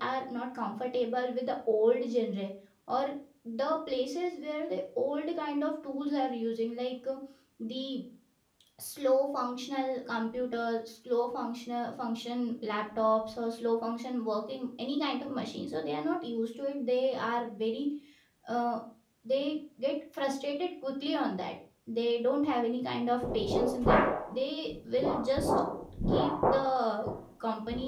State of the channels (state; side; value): identical; both; correlation 1.00